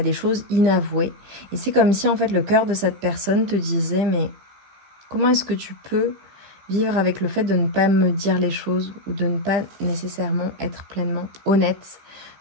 choses inavouées. Et c'est comme si en fait le cœur de cette personne te disait, mais comment est-ce que tu peux vivre avec le fait de ne pas me dire les choses ou de ne pas nécessairement être pleinement honnête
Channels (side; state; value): left; late; 15 ms